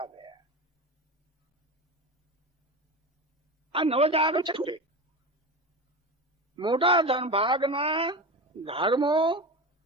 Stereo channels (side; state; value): both; normal; correlation 0.25